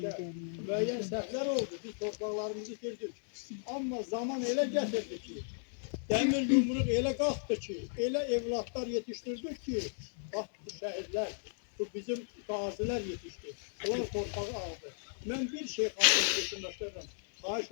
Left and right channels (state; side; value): silent; right; digital silence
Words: müəyyən səhvlər oldu. Biz torpaqlarımızı itirdik. Amma zaman elə gətirdi ki, dəmir yumruq elə qalxdı ki, elə evlatlar yetişdirdik ki, bax bu şəhidlər, bu bizim qazilər yetişdi. Onlar torpağı aldı. Mən bir şey xalqını düşünməklərəm, xahiş